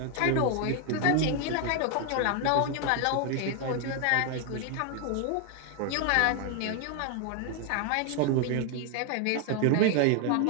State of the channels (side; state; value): both; different; correlation 0.01